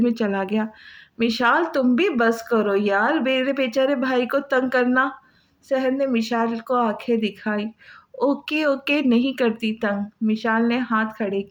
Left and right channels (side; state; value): both; identical; correlation 1.00